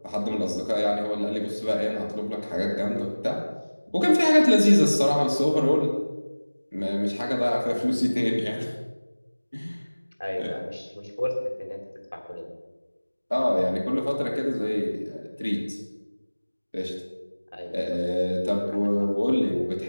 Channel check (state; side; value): inverted; both; correlation -1.00